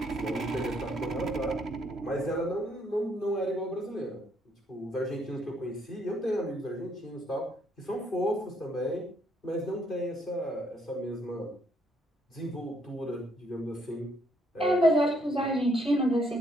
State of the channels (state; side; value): normal; both; correlation 0.70